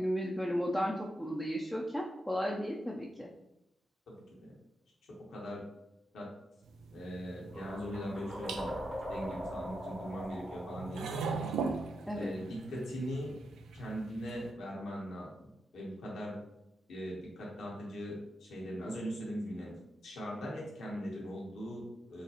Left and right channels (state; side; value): normal; both; correlation 0.86